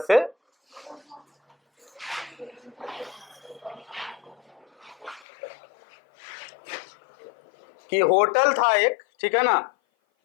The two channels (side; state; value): right; drops out; at 5.2 s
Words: से, कि होटल था एक, ठीक है ना,